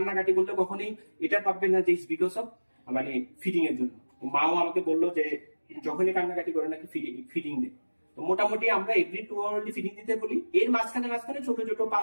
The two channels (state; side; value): inverted; both; correlation -1.00